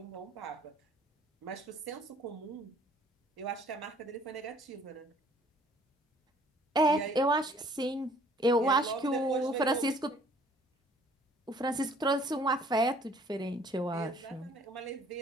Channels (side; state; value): both; normal; correlation 0.57